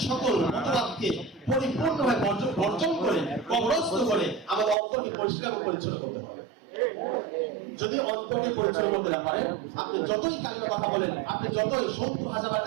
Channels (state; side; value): drops out; left; at 4.8 s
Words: সকল মতবাদকে পরিপূর্ণভাবে বর্জন করে, কবরস্থ করে আমাদের অন্তরকে পরিষ্কার ও পরিচ্ছন্ন করতে হবে। যদি অন্তরকে পরিচ্ছন্ন করতে না পারেন, আপনি যতই কালিমা কথা বলেন, আপনি যতই 70,000